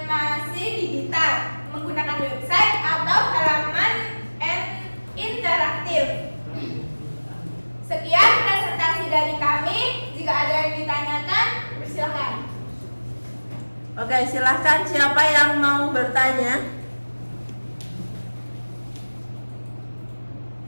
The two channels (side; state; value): both; inverted; correlation -1.00